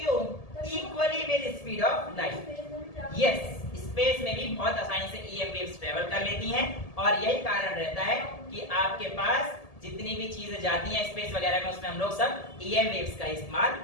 equally with speed of light. Yes, space में भी बहुत आसानी से ईएम वेव्स ट्रेवल कर लेती हैं और यही कारण रहता है कि आपके पास जितनी भी चीजें जाती हैं स्पेस वगैरह में उसमें हम लोग सब ईएम वेव्स का इस्तेमाल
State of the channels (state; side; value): late; right; 1.7 ms